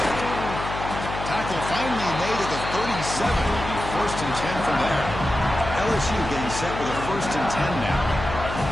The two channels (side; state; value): left; noise; hum, 7 dB below the sound